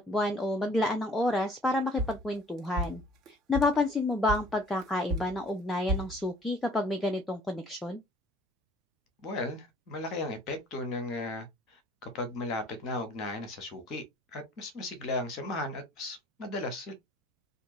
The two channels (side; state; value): both; normal; correlation 0.54